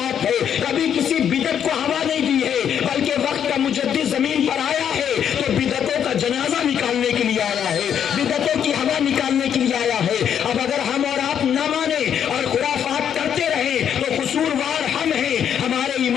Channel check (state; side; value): quieter; right; 8.8 dB